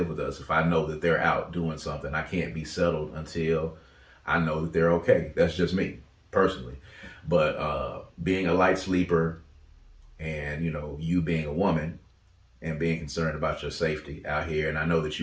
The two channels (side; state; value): both; identical; correlation 1.00